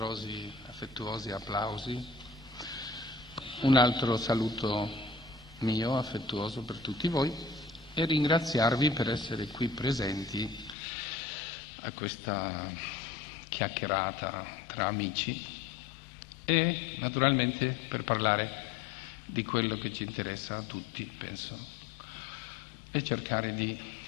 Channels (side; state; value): right; drops out; at 10.8 s